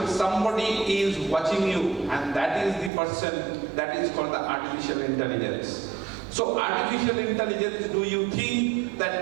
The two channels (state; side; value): drops out; left; at 2.9 s